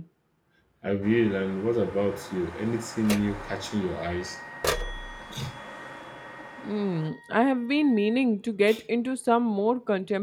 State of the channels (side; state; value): both; identical; correlation 1.00